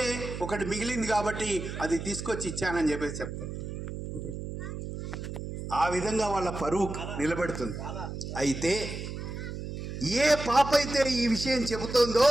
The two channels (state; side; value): noise; right; hum, 7 dB below the sound